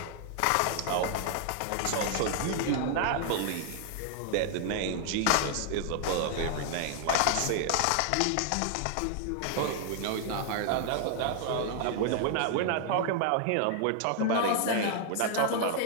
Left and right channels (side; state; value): both; different; correlation 0.00